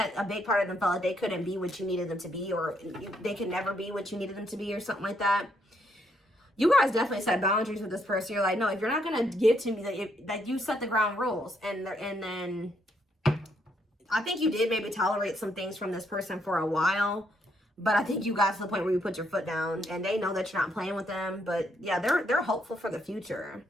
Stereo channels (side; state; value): both; normal; correlation 0.74